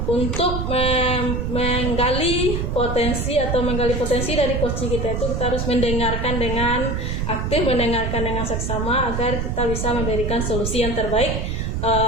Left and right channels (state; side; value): noise; right; rumble, 1 dB below the sound